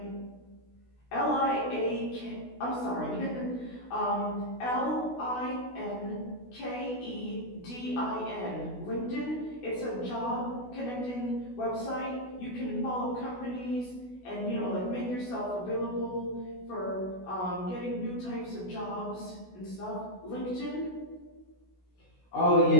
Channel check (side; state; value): right; late; 16 ms